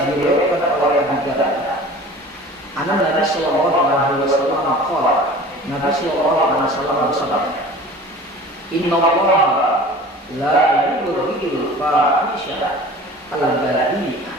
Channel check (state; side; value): normal; both; correlation 0.42